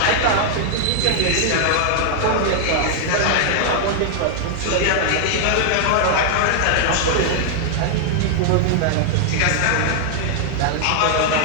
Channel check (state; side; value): different; both; correlation -0.01